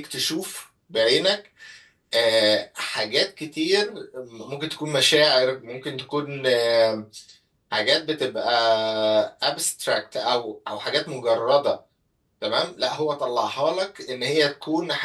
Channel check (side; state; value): both; identical; correlation 1.00